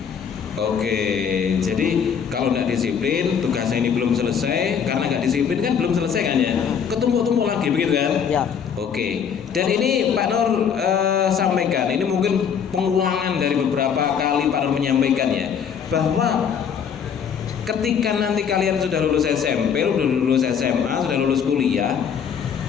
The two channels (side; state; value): right; quieter; 7.4 dB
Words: Oke, jadi kalau nggak disiplin, tugasnya ini belum selesai. Karena nggak disiplin kan belum selesai kan ya, ketumpuk-tumpuk lagi begitu kan Ya. Oke, dan ini Pak Nur sampaikan, ini mungkin pengulangan dari beberapa kali Pak Nur menyampaikan ya, bahwa ketika nanti kalian sudah lulus SMP, sudah lulus SMA, sudah lulus kuliah,